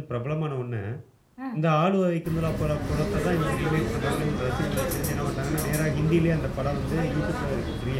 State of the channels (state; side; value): identical; both; correlation 1.00